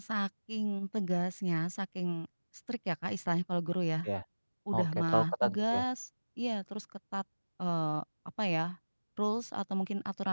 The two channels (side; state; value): both; inverted; correlation -1.00